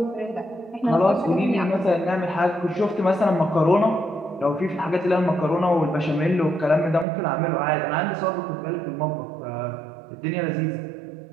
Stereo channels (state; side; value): drops out; left; at 7.1 s